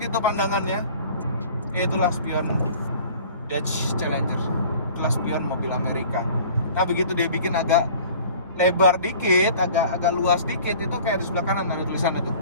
gitu pandangannya. Itulah spion Dodge Challenger. Itulah spion mobil Amerika. Nah begitu dia bikin agak lebar dikit, agak luas dikit, itu kayak di sebelah kanan ada tulisan itu.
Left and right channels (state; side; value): inverted; both; correlation -0.47